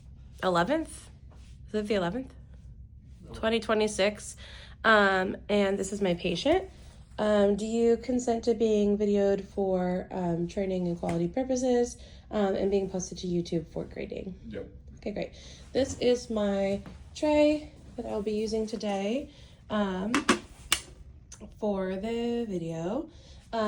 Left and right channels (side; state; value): both; identical; correlation 1.00